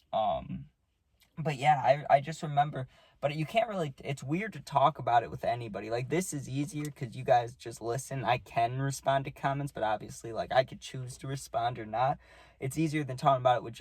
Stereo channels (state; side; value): identical; both; correlation 1.00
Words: But yeah, I just remember, but you can't really, it's weird to talk about it with anybody. Like, this is easier because you guys just listen. I can respond to comments, but obviously, like, I could choose to respond or not. It's easier than talking about it with